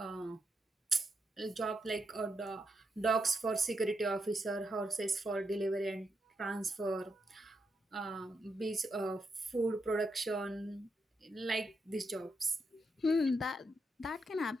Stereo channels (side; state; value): both; normal; correlation 0.82